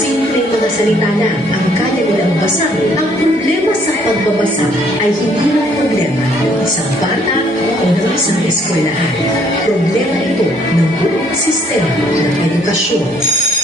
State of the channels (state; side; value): normal; both; correlation 0.64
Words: mga salita na ang kaya nilang basahin. Ang problema sa pagbabasa ay hindi lang problema ng isang bata o ng isang eskwelahan. Problema ito ng buong sistema ng edukasyon.